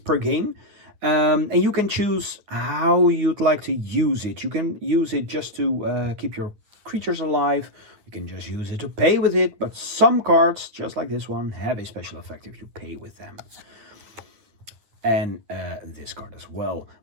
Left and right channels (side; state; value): left; late; 9.9 ms